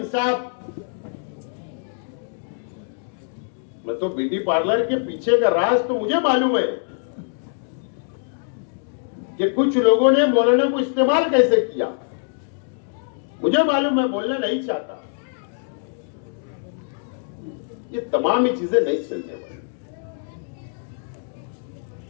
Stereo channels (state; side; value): silent; right; digital silence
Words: मैं तो ब्यूटी पार्लर के पीछे का राज तो मुझे मालूम है, कि कुछ लोगों ने मौलाना को इस्तेमाल कैसे किया। मुझे मालूम, मैं बोलना नहीं चाहता। ये तमाम ही चीजें नहीं चलने वाली।